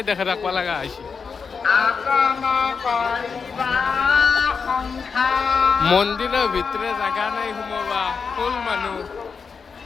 দেখে ৰাখিব লগা হৈছে মন্দিৰৰ ভিতৰে জাগা নাই সোমাবা ফুল মানুহ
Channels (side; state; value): right; quieter; 5.5 dB